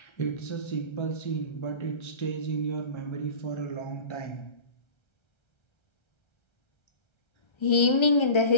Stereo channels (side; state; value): right; late; 1.3 ms